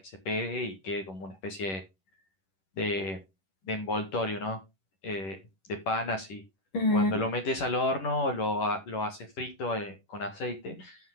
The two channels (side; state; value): right; late; 11 ms